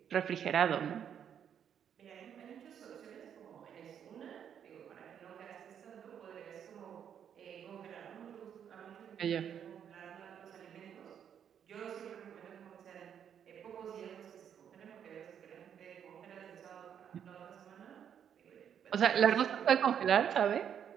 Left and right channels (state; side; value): quieter; left; 8.6 dB